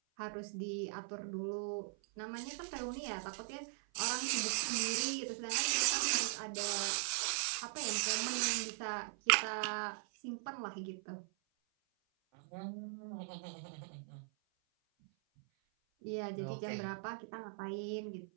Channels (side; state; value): left; silent; 51 dB below the other